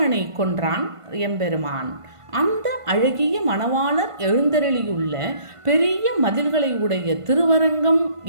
கொன்றான் எம்பெருமான். அந்த அழகிய மணவாளர் எழுந்தருளியுள்ள பெரிய மதில்களை உடைய திருவரங்கம்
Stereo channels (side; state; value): left; late; 1.5 ms